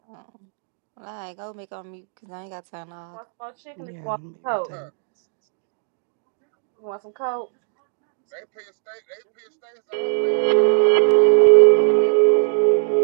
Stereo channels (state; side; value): silent; left; digital silence